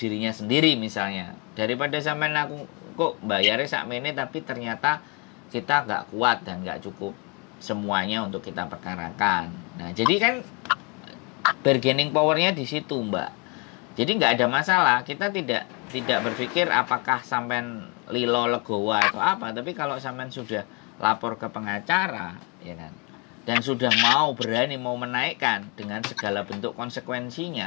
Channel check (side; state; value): right; quieter; 32.1 dB